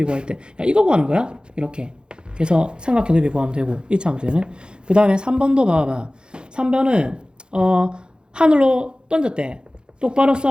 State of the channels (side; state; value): left; late; 0.049 ms